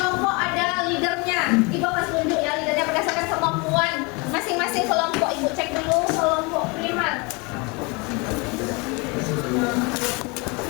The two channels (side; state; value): right; quieter; 28.8 dB